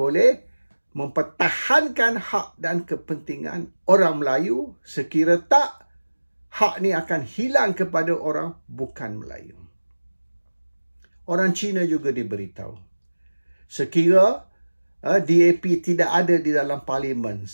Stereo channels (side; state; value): both; inverted; correlation -1.00